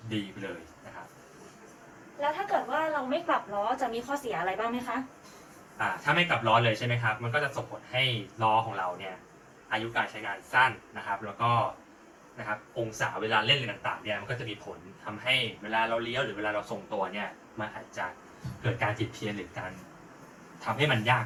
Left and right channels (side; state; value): both; identical; correlation 1.00